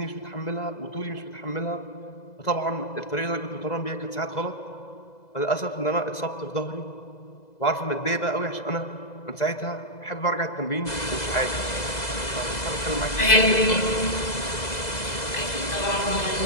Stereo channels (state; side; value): late; right; 2.0 ms